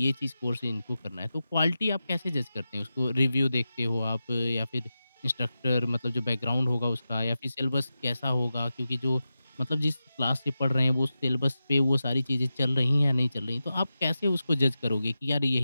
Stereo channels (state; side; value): inverted; both; correlation -0.92